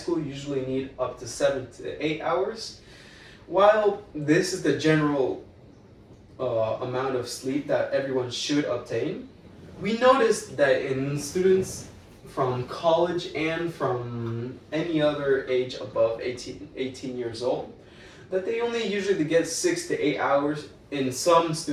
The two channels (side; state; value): both; identical; correlation 1.00